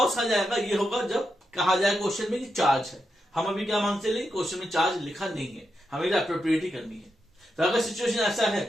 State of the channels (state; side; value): normal; both; correlation 0.85